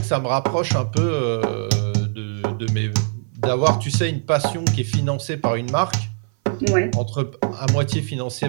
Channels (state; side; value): silent; left; 58 dB below the other